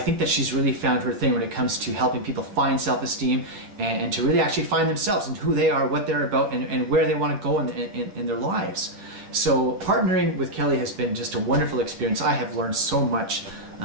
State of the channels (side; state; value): left; late; 10 ms